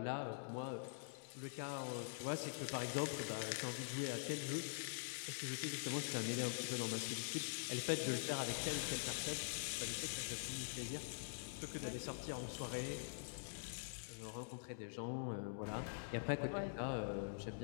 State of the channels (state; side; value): silent; right; digital silence